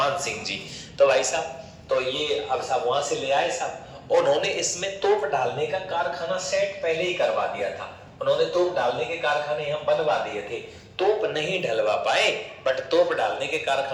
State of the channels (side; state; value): both; identical; correlation 1.00